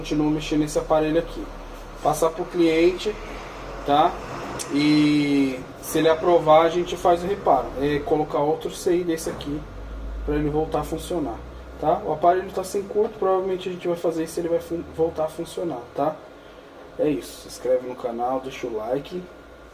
mexendo nesse aparelho aqui. Passar pro cliente, tá? E se ele aprovar, a gente faz o reparo. É colocar outro CI desse aqui para ele voltar a funcionar, tá? O aparelho está sem curto, provavelmente a gente vai fazer isso, ele vai voltar a funcionar, tá? É isso. Se inscreve no canal, deixa o like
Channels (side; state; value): both; identical; correlation 1.00